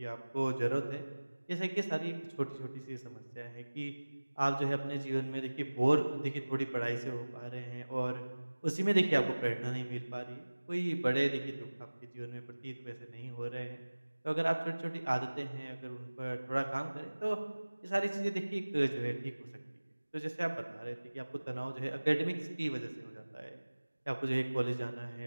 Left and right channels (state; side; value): inverted; both; correlation -1.00